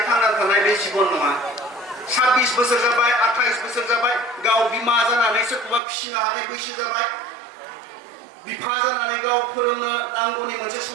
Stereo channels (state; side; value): drops out; left; at 5.8 s